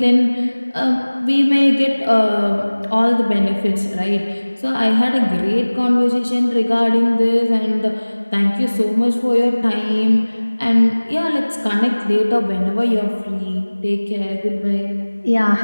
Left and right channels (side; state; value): both; inverted; correlation -1.00